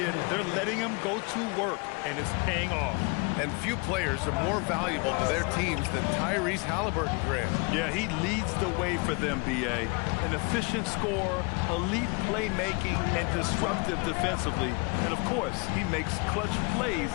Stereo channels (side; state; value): right; quieter; 31.6 dB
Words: they're letting him go to work, and it's paying off. And few players are more valuable to their teams than Tyrese Halliburton, Grant. Yeah, he leads the way for them, BA. An efficient scorer, elite playmaking, and disruptive defensively. And, of course, he makes clutch plays